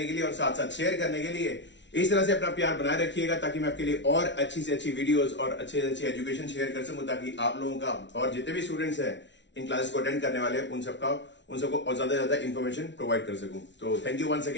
के लिए और साथ साथ शेयर करने के लिए। इस तरह से अपना प्यार बनाए रखिएगा ताकि मैं आपके लिए और अच्छी से अच्छी वीडियोस और अच्छे से अच्छी एजुकेशन शेयर कर सकूं, ताकि आप लोगों का और जितने भी स्टूडेंट्स हैं इन क्लासेस को अटेंड करने वाले उन सबको और ज्यादा इन्फॉर्मेशन प्रोवाइड कर सकूं। तो थैंक यू वंस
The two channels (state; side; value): late; right; 0.52 ms